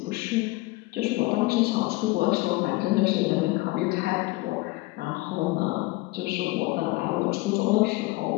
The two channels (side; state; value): right; quieter; 21.7 dB